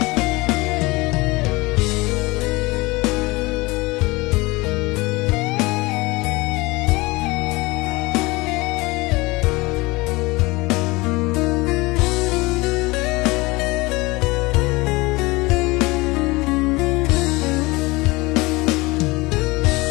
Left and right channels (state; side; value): quieter; right; 23.0 dB